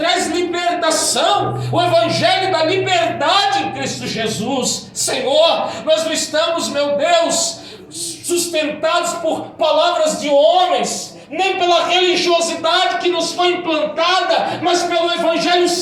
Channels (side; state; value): both; identical; correlation 1.00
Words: libertação, o evangelho da liberdade em Cristo Jesus. Senhor, nós não estamos, meu Deus, sustentados por palavras de homens, nem pela religiosidade que nos foi implantada, mas pelo evangelho